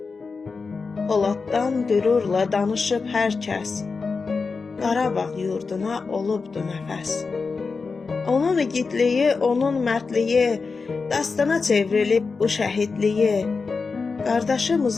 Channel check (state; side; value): quieter; right; 4.6 dB